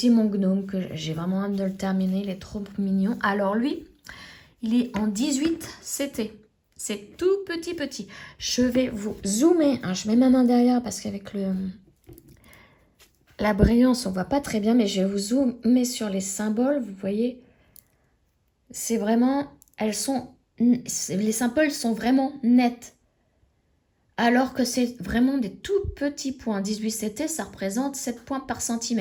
mon gnome que j'ai vraiment hâte de le terminer. Il est trop mignon. Alors lui, il est en 18 CT. C'est tout petit. Je vais vous zoomer. Hein, je mets ma main derrière parce qu'avec la brillance, on ne voit pas très bien. Mais je vais vous zoomer sur les symboles. Vous voyez, c'est vraiment... les symboles sont vraiment nets. Alors que c'est vraiment des tout petits points. 18 CT, ça représente 7 points par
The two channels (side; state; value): both; identical; correlation 1.00